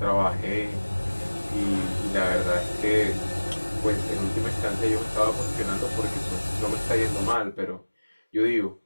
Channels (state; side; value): inverted; both; correlation -1.00